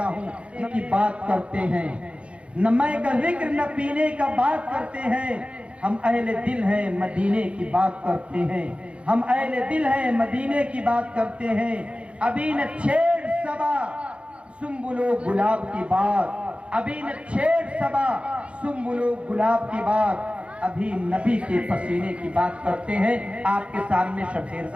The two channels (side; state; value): left; late; 0.060 ms